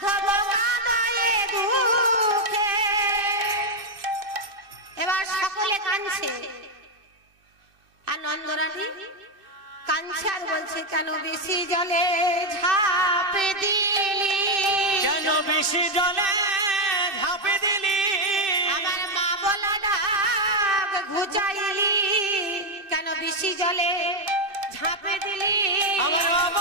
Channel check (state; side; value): late; left; 2.5 ms